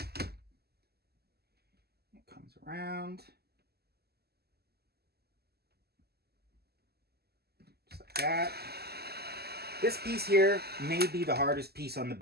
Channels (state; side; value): late; left; 0.46 ms